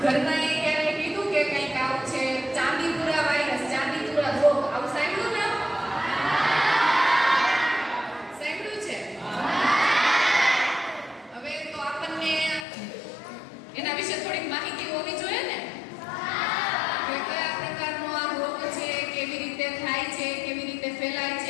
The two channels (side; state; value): right; drops out; at 12.7 s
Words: ઘરમાં એ ક્યારે કીધું કે કંઈક આવું છે ચાંદીપુરા વાયરસ, ચાંદીપુરા રોગ, આવું સાંભળ્યું ને? સાંભળ્યું છે? હવે તો આપણને એના વિશે થોડીક માહિતી હોવી જોઈએ ને કે કયા પ્રકારનો આ રોગ છે, કેવી રીતે થાય છે, કેવી રીતે ફેલાય